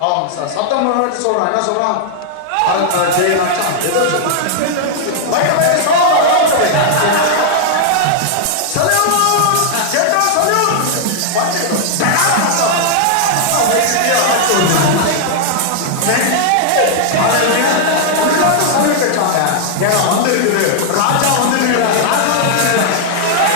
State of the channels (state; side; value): different; both; correlation -0.01